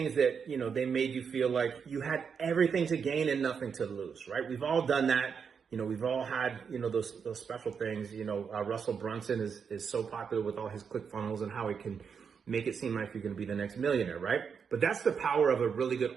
that, they made you feel like you had everything to gain and nothing to lose, right? We've all done that. We've all had, those special things. Russell Brunson is so popular with all his ClickFunnels and how he can make it seem like you're going to be the next millionaire, right? But that's the power of a really good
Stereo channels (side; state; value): left; quieter; 6.4 dB